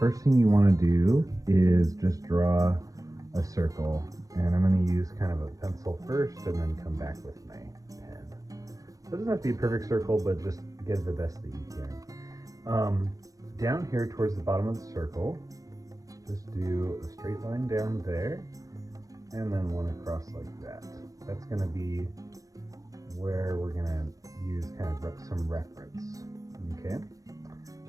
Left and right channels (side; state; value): left; late; 0.17 ms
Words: thing you want to do is just draw a circle. And I'm going to use kind of a pencil first and then come back with my pen. It doesn't have to be a perfect circle, but just get the best that you can. Down here towards the bottom of the circle, just do a straight line down there and then one across like that. That's going to be where we're going to use kind of some reference. Okay.